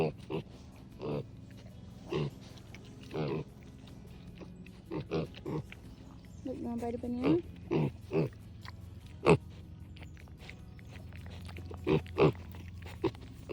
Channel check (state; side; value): identical; both; correlation 1.00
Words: Look, you want to bite a banana?